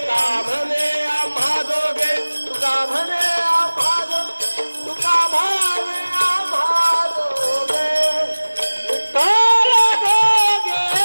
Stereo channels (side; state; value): both; inverted; correlation -1.00